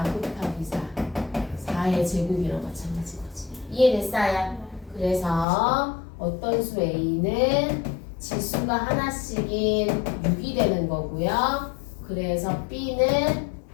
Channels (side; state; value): right; drops out; at 5.5 s